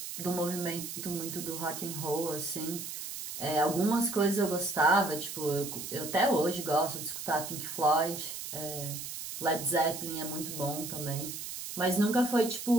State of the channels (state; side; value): noise; right; hiss, 8 dB below the sound